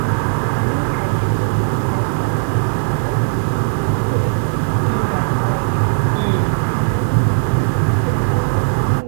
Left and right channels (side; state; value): left; silent; digital silence